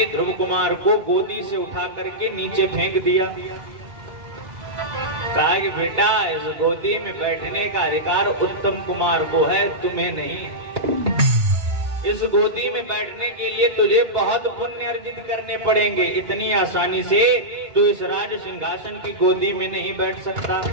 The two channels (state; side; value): late; left; 2.0 ms